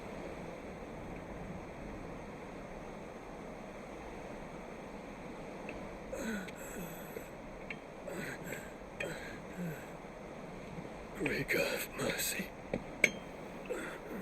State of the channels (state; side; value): identical; both; correlation 1.00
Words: Great God of mercy.